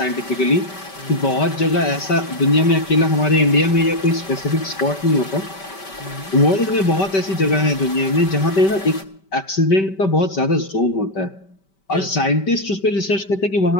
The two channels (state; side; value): late; right; 5.2 ms